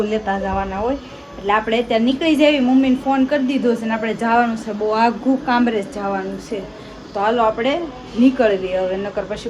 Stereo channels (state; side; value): identical; both; correlation 1.00